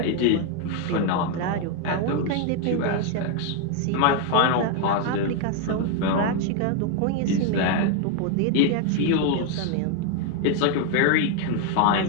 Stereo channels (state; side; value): different; both; correlation 0.01